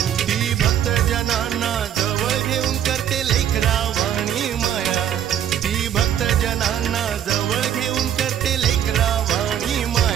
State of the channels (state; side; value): quieter; left; 9.9 dB